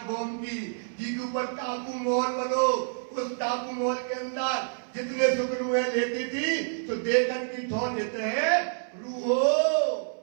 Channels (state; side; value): silent; left; 59 dB below the other